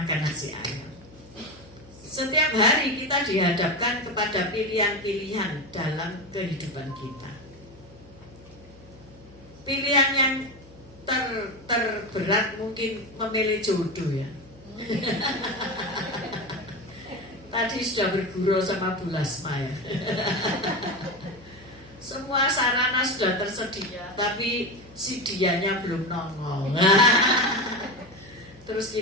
nasi ayam. Setiap hari kita dihadapkan kepada pilihan-pilihan dalam kehidupan kita. Pilihan yang terberat mungkin memilih jodoh ya. Tadi sudah bergurau sama Bu Lasma ya. Semua sarana sudah tersedia, tapi si dianya belum nongol. Terus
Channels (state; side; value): noise; left; hum, 23 dB below the sound